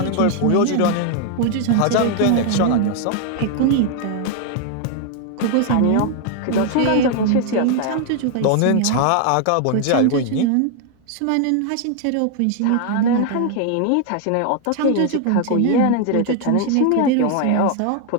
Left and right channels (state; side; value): different; both; correlation 0.00